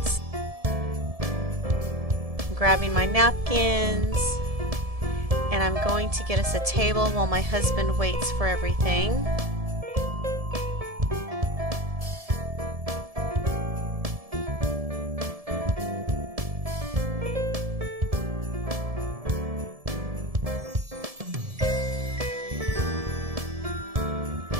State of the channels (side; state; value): left; late; 1.7 ms